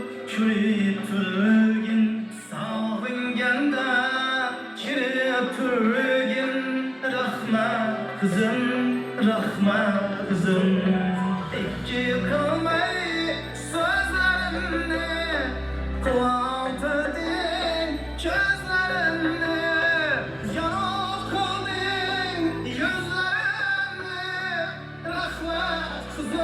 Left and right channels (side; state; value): both; identical; correlation 1.00